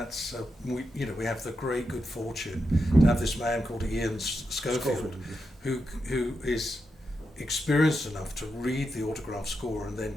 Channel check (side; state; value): both; normal; correlation 0.86